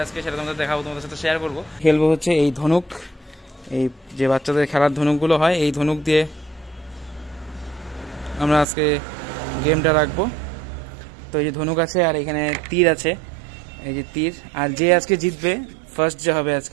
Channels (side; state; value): left; drops out; at 8.7 s